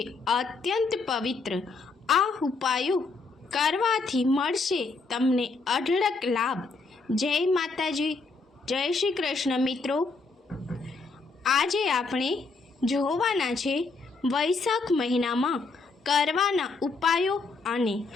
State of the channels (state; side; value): quieter; right; 4.0 dB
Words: અત્યંત પવિત્ર। આ ઉપાયો કરવાથી મળશે તમને અઢળક લાભ। જય માતાજી, જય શ્રી કૃષ્ણ। મિત્રો, આજે આપણે જોવાના છે વૈશાખ મહિનામાં કરવાના ઉપાયો અને